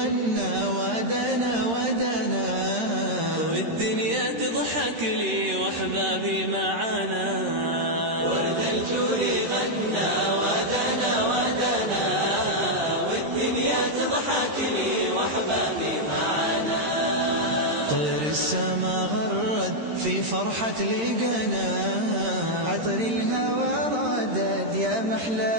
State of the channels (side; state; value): left; late; 13 ms